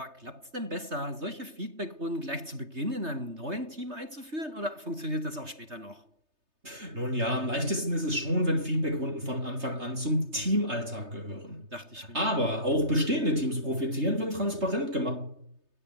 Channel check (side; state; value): left; late; 3.3 ms